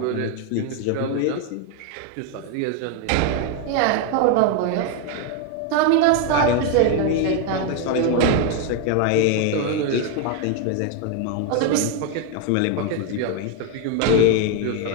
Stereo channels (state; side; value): different; both; correlation 0.01